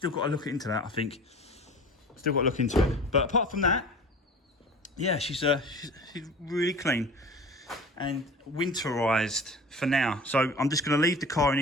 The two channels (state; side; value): normal; both; correlation 0.40